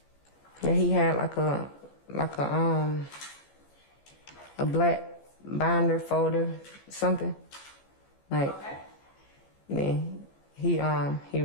Yeah, he had like a black binder folder, something. Like, Okay. then he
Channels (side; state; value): right; late; 14 ms